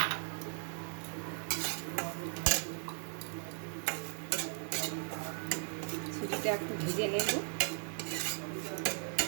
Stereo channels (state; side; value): silent; left; 53 dB below the other